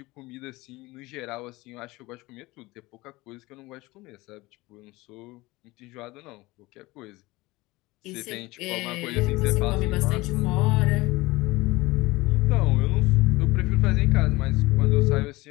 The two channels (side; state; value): right; quieter; 20.9 dB